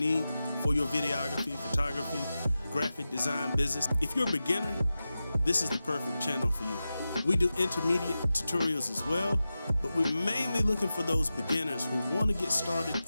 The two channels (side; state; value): both; inverted; correlation -0.93